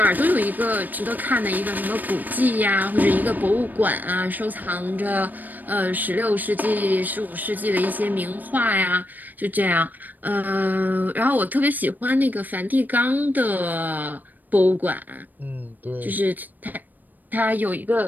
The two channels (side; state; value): left; late; 0.086 ms